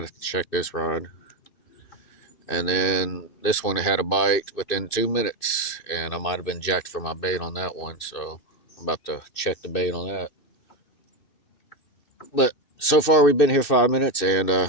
have to check this rod. And then this one had a bite within 2 minutes, and I might have been jacked for my bait on that one. So I'm about to check the bait on that. But so far we've been here 5 minutes and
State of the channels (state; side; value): late; right; 2.6 ms